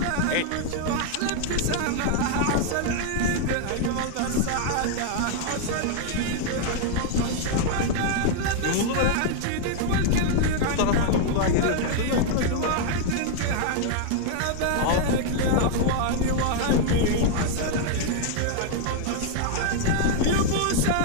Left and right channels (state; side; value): different; both; correlation 0.00